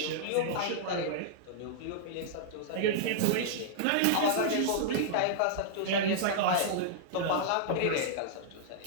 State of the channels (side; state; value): both; different; correlation -0.01